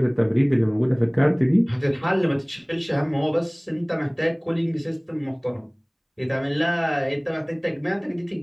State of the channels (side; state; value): both; identical; correlation 1.00